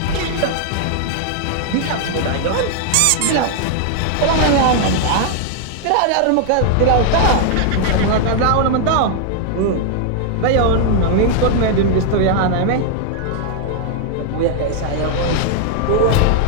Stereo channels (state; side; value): different; both; correlation 0.00